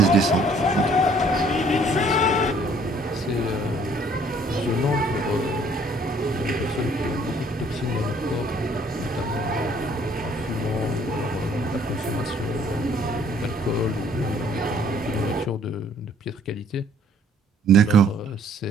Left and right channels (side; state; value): both; normal; correlation 0.60